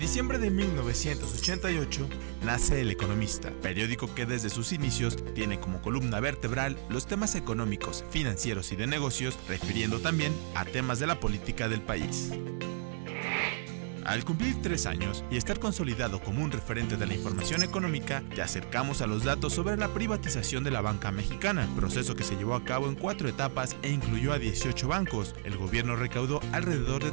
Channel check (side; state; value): left; silent; 56 dB below the other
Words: de 1988 nace El Economista, periódico que desde sus inicios tiene como columna vertebral los temas económicos, financieros y de negocios, refiriendo también a temas de la política del país. Al cumplir 3 años y estar consolidado como un referente de la información económica, te acercamos a los datos sobre la privatización de la banca mexicana, proceso que se llevó a cabo en 4 etapas e incluyó a 18 bancos. El gobierno recaudó alrededor de